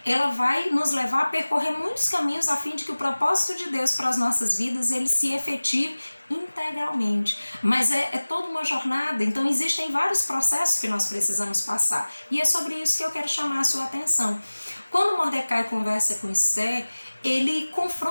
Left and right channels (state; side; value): inverted; both; correlation -1.00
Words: ela vai nos levar a percorrer muitos caminhos a fim de que o propósito de Deus para as nossas vidas, ele se efetive integralmente. Mas é toda uma jornada, então existem vários processos que nós precisamos passar. E é sobre isso que eu quero chamar a sua atenção. Quando Mordecai conversa com Esther, ele